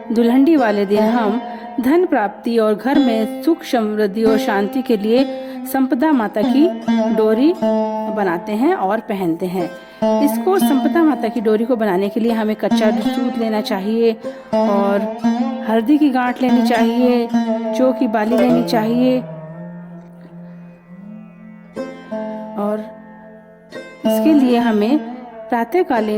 दुल्हनडी वाले दिन हम धन प्राप्ति और घर में सुख समृद्धि और शांति के लिए संपदा माता की डोरी बनाते हैं और पहनते हैं। इसको संपदा माता की डोरी को बनाने के लिए हमें कच्चा दूध लेना चाहिए और हल्दी की गांठ लेनी चाहिए, जौ की बाली लेनी चाहिए और इसके लिए हमें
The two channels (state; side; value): identical; both; correlation 1.00